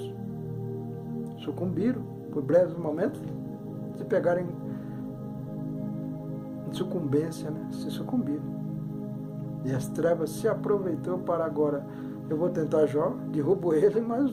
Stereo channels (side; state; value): both; identical; correlation 1.00